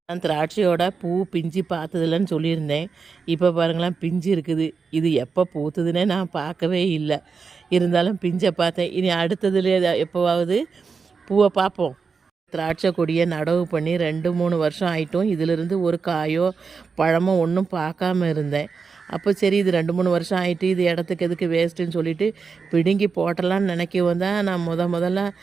நான் திராட்சையோட பூ பிஞ்சு பார்த்ததில்லன்னு சொல்லியிருந்தேன். இப்போ பாருங்களேன், பிஞ்சு இருக்குது. இது எப்போ பூத்துதுன்னே நான் பார்க்கவே இல்லை. இருந்தாலும் பிஞ்சை பார்த்தேன். இனி அடுத்ததுல எப்போவாவது பூவை பார்ப்போம். திராட்சை கொடியை நடவு பண்ணி 2-3 வருஷம் ஆகிட்டும். இதிலிருந்து ஒரு காயோ பழமோ ஒன்றும் பார்க்காம இருந்தேன். அப்போ சரி, இது 2-3 வருஷம் ஆகிட்டு, இது இடத்துக்கு எதுக்கு வேஸ்ட்டுன்னு சொல்லிவிட்டு பிடுங்கி போட்டலான்னு நினைக்கவும் தான் நான் முதல்ல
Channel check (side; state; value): left; quieter; 5.2 dB